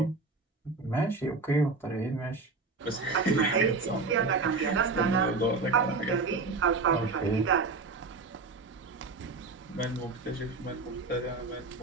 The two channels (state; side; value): quieter; left; 3.9 dB